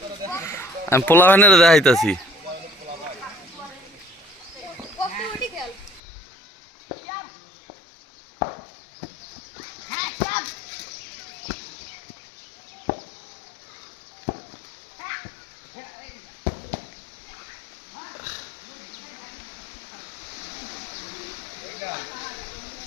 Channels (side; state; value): right; drops out; at 6.0 s